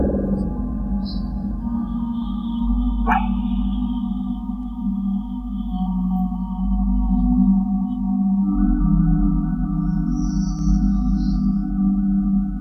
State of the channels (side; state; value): both; identical; correlation 1.00